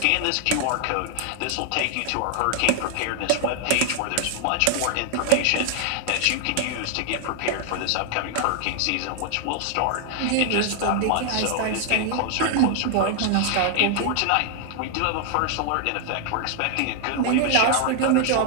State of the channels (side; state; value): both; different; correlation 0.00